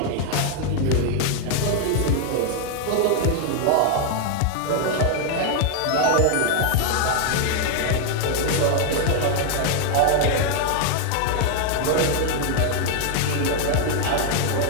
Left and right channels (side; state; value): both; different; correlation 0.00